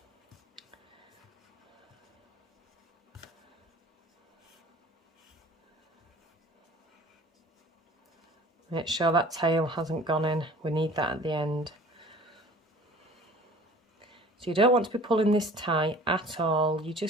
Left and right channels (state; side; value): normal; both; correlation 0.46